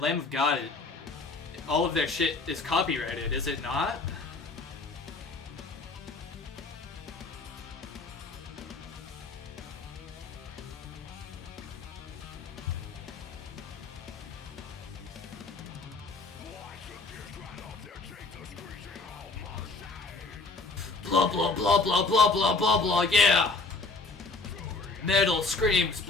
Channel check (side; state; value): right; quieter; 3.7 dB